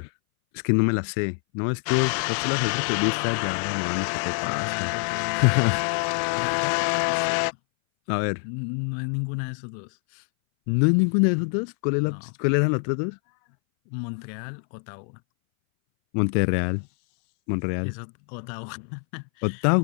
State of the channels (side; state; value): right; silent; 60 dB below the other